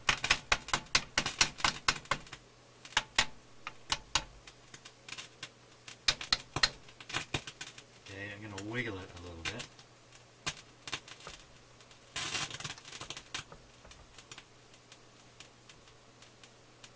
Okay, I'm going to wiggle it a little bit.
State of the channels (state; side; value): identical; both; correlation 1.00